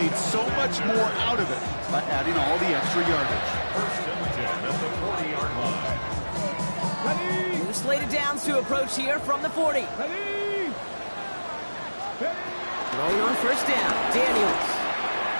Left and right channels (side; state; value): both; inverted; correlation -1.00